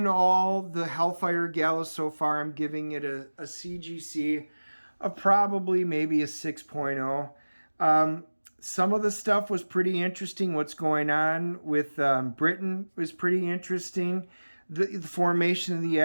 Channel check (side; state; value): both; inverted; correlation -1.00